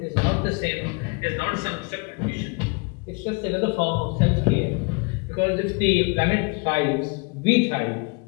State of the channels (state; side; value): quieter; right; 31.3 dB